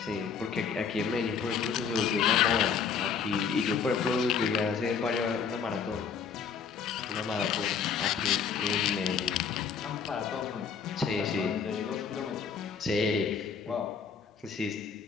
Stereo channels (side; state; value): right; quieter; 6.4 dB